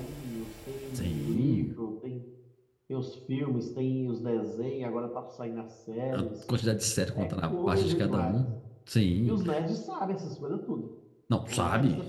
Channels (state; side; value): identical; both; correlation 1.00